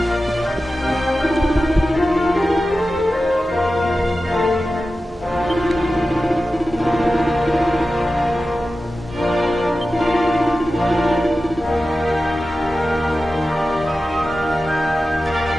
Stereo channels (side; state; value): both; normal; correlation 0.94